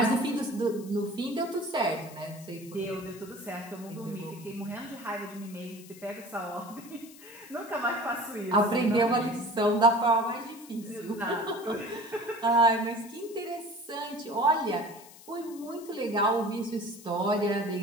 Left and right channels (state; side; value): noise; left; hiss, 20 dB below the sound